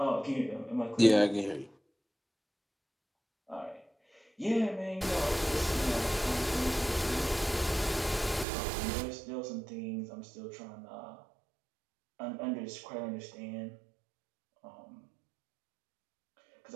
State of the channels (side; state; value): left; drops out; at 8.5 s